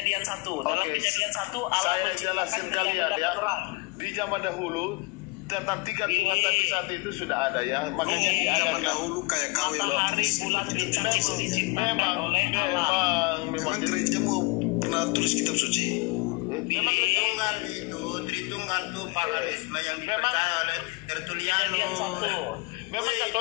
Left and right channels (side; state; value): right; quieter; 26.6 dB